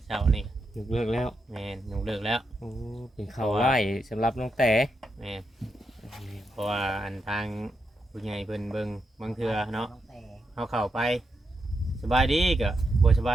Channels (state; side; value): normal; both; correlation 0.84